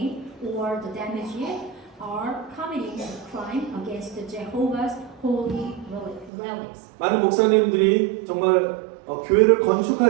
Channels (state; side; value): drops out; left; at 6.3 s